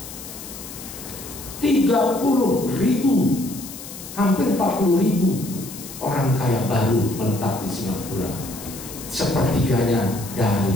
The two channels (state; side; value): noise; left; hiss, 13 dB below the sound